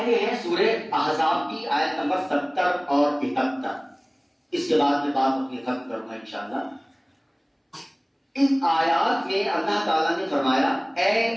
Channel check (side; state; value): both; identical; correlation 1.00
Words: ہیں سورہ احزاب کی، آیت نمبر 70 اور 71۔ اس کے بعد میں بات اپنی ختم کروں گا انشاءاللہ۔ اس آیات میں اللہ تعالیٰ نے فرمایا، اے